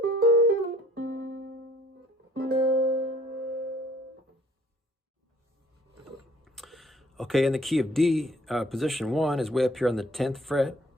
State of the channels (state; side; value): normal; both; correlation 0.57